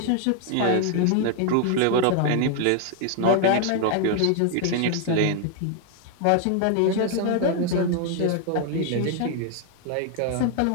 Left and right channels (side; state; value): both; different; correlation 0.00